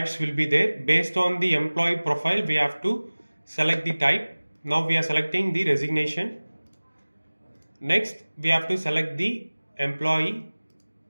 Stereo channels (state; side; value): inverted; both; correlation -1.00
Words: will be there. Based on the employee profile, we have to select the type. Now we are selecting the resignation. Next, we have to select the employee.